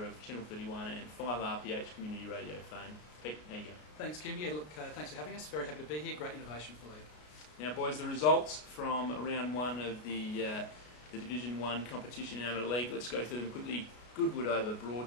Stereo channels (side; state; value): right; late; 33 ms